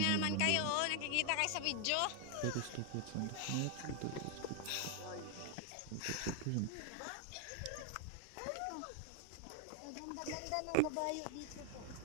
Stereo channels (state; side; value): different; both; correlation 0.00